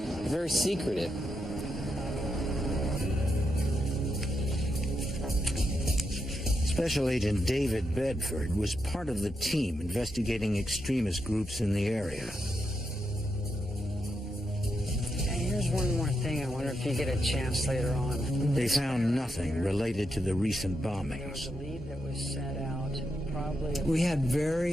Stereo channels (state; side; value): normal; both; correlation 0.84